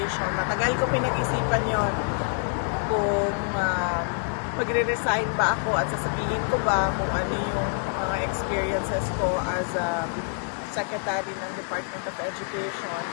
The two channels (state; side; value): silent; right; 59 dB below the other